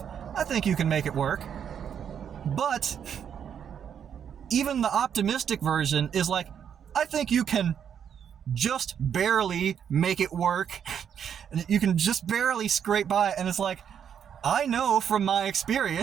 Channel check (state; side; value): quieter; left; 8.3 dB